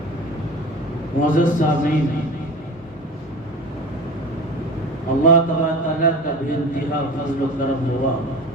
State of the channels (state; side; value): normal; both; correlation 0.35